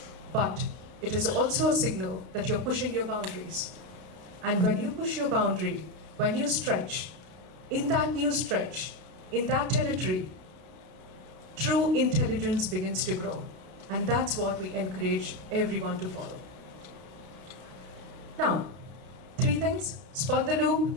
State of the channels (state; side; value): late; left; 32 ms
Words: but it is also a signal that you're pushing your boundaries. And when you push your boundary, when you stretch, in that new stretch, in that territory, true intelligence begins to grow. And that's what we encourage everyone to follow. Now, 3 things: spot the